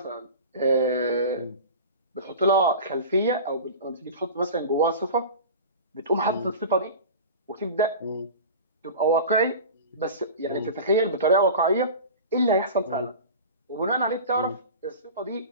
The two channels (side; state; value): both; inverted; correlation -0.34